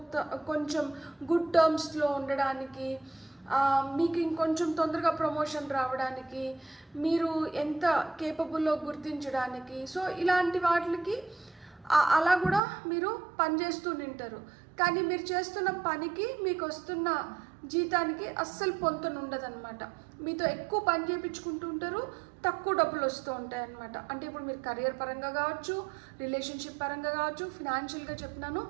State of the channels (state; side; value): drops out; left; at 12.6 s